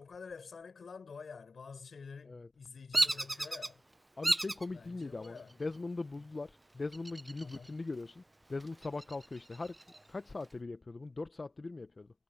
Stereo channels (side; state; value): both; normal; correlation 0.97